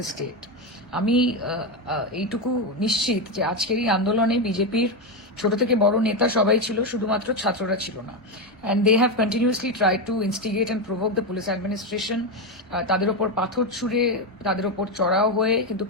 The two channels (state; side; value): normal; both; correlation 0.10